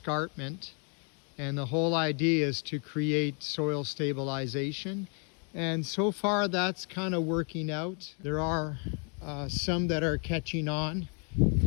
And the whole idea is to create soil stabilization. And so far that's kind of working out. There are some that are catching on,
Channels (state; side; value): quieter; right; 39.4 dB